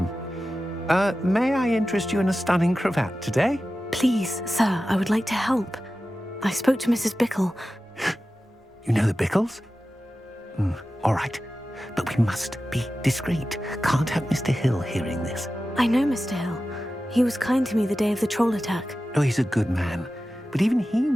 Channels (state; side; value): normal; both; correlation 0.94